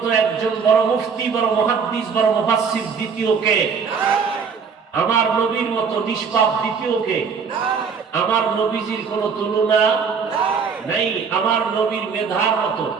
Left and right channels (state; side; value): quieter; left; 5.9 dB